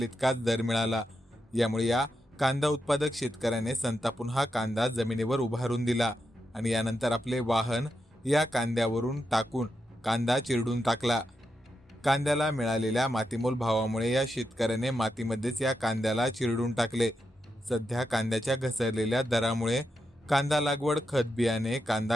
इतकाच दर मिळाला। यामुळे या कांदा उत्पादक शेतकऱ्याने संतापून हा कांदा जमिनीवर उभारून दिला आणि यानंतर आपले वाहन या कांद्यावरून टाकून कांदा चिरडून टाकला। कांद्याला मिळालेल्या मातीमोल भावामुळे या शेतकऱ्याने मातीमध्येच या कांद्याला चिरडून टाकले। सध्या कांद्याच्या घसरलेल्या दरामुळे कांदा लागवड, खत बियाणे,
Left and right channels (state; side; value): normal; both; correlation 0.86